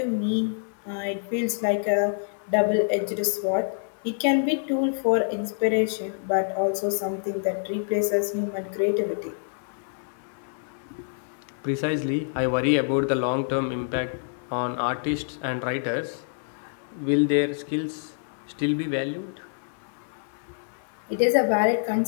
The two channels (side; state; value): right; silent; digital silence